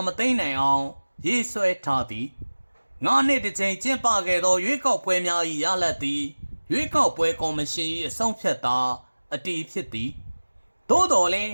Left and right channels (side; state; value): both; inverted; correlation -1.00